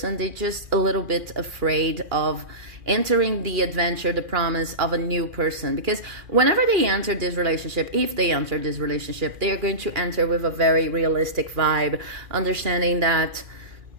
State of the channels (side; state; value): left; late; 2.4 ms